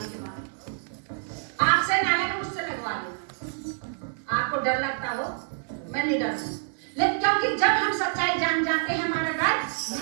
आपसे नाले को मुझसे लगवा लो। आपको डर लगता हो, मैं नहीं डरती, लेकिन क्योंकि जब हम सच्चाई जान जाते हैं हमारा डर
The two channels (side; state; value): left; silent; digital silence